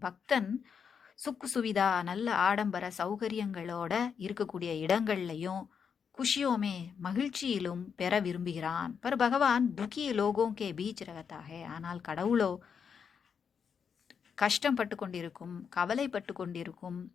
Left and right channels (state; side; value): quieter; right; 6.7 dB